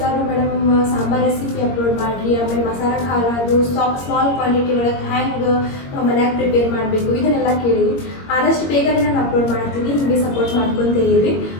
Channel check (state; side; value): late; right; 21 ms